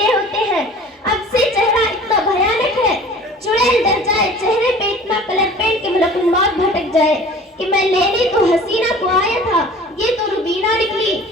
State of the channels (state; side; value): normal; both; correlation 0.45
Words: ہوتے ہیں۔ اب سے چہرہ اتنا بھیانک ہے، چڑیل ڈر جائے چہرے پہ اتنا کلر پینٹ کے ملک الموت بھٹک جائے کہ میں لینے تو حسینہ کو آیا تھا، یہ تو روبینہ نکلی۔